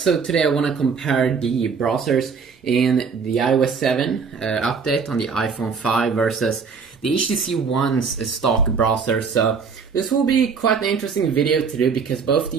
today I want to compare the browsers in the iOS 7 update on the iPhone 5 versus the HTC One's stock browser. So this will be quite an interesting video to do because both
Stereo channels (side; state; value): left; quieter; 5.6 dB